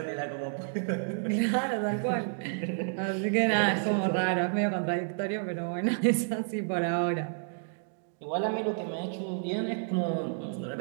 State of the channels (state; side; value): silent; left; digital silence